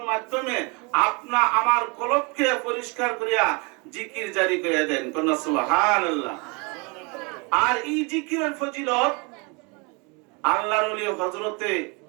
মাধ্যমে আপনা আমার কলবকে পরিষ্কার করিয়া জিকির জারি করে দেন। কোন সুবহানাল্লাহ। আর এই জিকিরের ফজিলত আল্লাহর ওলি হযরতে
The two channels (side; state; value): left; quieter; 30.5 dB